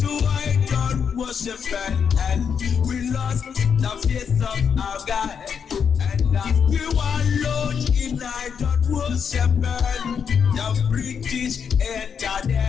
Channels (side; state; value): right; quieter; 7.0 dB